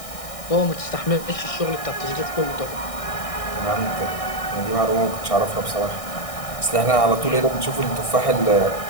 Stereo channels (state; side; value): late; right; 1.6 ms